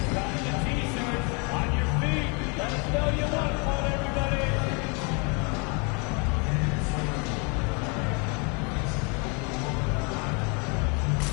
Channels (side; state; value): right; quieter; 33.4 dB